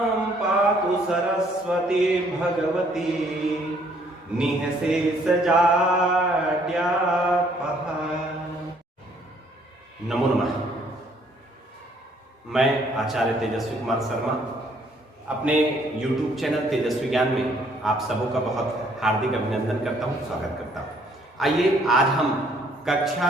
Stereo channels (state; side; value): normal; both; correlation 0.64